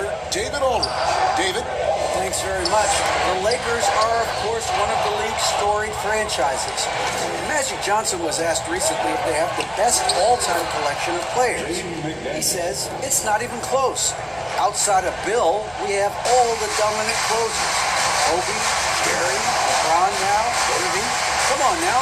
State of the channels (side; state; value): both; identical; correlation 1.00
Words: David Aldridge. David? Thanks very much. The Lakers are, of course, one of the league's storied franchises. Magic Johnson was asked recently if they have the best all-time collection of players. He says it's not even close. Outside of Bill, we have all the dominant closers. Kobe, Jerry, LeBron now, Davey. Come on